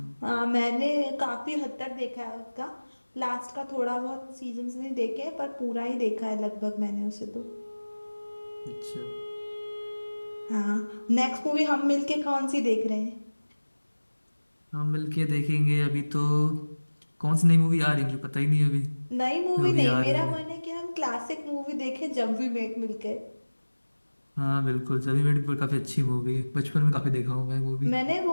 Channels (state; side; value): inverted; both; correlation -1.00